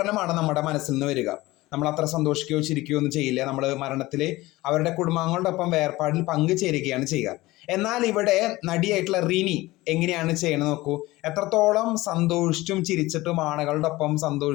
നമ്മുടെ മനസ്സിൽ നിന്ന് വരിക. നമ്മൾ അത്ര സന്തോഷിക്കുകയോ ചിരിക്കുകയോ ഒന്നും ചെയ്യില്ല. നമ്മൾ മരണത്തിൽ അവരുടെ കുടുംബാംഗങ്ങളോടൊപ്പം വേർപാടിൽ പങ്കുചേരുകയാണ് ചെയ്യുക. എന്നാൽ ഇവിടെ നടിയായിട്ടുള്ള റിനി എങ്ങനെയാണ് ചെയ്യണത് നോക്കൂ. എത്രത്തോളം സന്തോഷിച്ചും ചിരിച്ചിട്ടും ആളുകളുടെ ഒപ്പം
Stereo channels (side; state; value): right; quieter; 19.2 dB